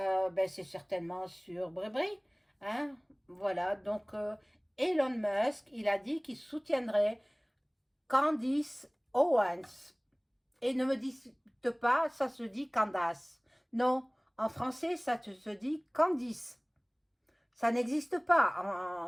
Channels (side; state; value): both; identical; correlation 1.00